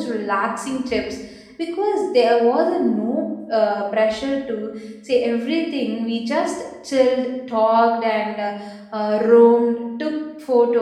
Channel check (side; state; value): both; identical; correlation 1.00